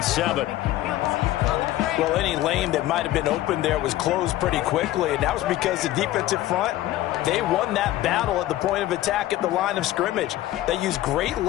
Well, any lane that might have been open there was closed pretty quickly, and that was because the defensive front, they won that battle at the point of attack at the line of scrimmage. They used great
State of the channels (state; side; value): quieter; right; 15.0 dB